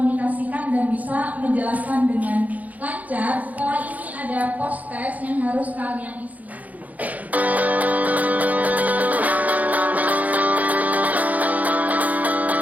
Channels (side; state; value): left; late; 0.076 ms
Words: dan bisa menjelaskan dengan lancar. Setelah ini ada post test yang harus kalian isi.